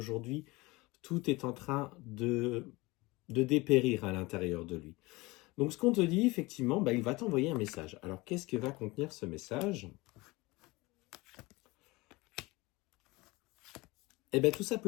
tout est en train de dépérir à l'intérieur de lui. Donc ce qu'on te dit, effectivement, il va t'envoyer un message. Alors qu'est-ce que va contenir ce message? Eh bien tout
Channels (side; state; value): right; quieter; 22.6 dB